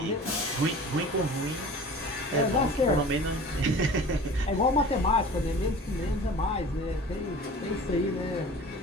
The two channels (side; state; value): both; normal; correlation 0.41